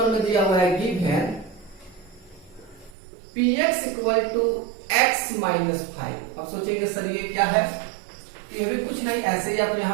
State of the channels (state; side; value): drops out; left; at 2.9 s